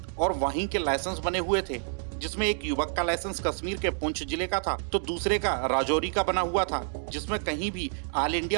और वहीं के लाइसेंस बने हुए थे, जिसमें एक युवक का लाइसेंस कश्मीर के पुंछ जिले का था तो दूसरे का राजौरी का बना हुआ था, जिसमें कहीं भी ऑल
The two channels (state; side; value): silent; left; 59 dB below the other